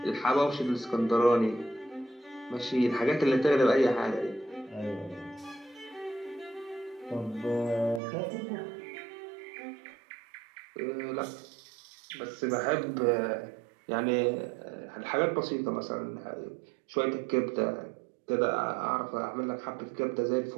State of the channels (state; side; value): drops out; left; at 8.0 s